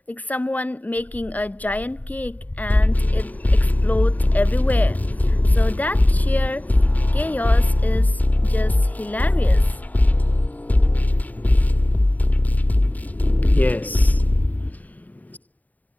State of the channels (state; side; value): late; right; 0.077 ms